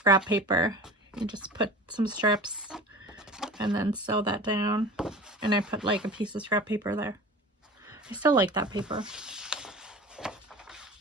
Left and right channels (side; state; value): both; normal; correlation 0.38